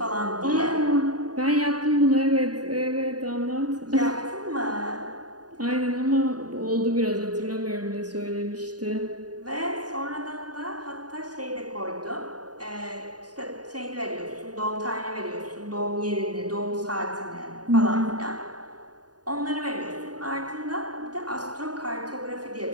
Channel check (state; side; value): late; left; 0.68 ms